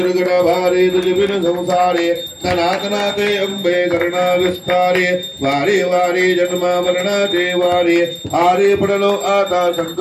भारे दुर्बिन संसारे सनातनाते अंबे करुणा विस्तारे वारे वारे जन्म मरणाचे वारे हारे पडलो आता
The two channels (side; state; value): both; identical; correlation 1.00